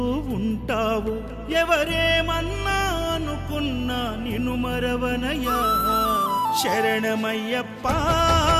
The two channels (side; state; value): both; identical; correlation 1.00